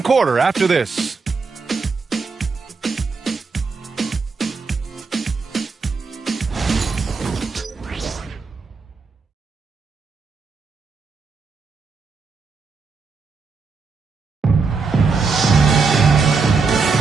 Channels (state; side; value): quieter; left; 4.7 dB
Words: quarter after this.